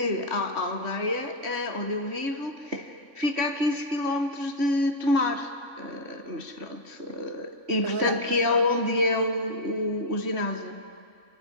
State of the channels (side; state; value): left; late; 3.5 ms